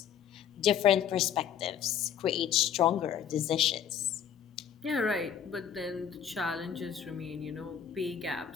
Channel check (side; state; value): right; quieter; 8.7 dB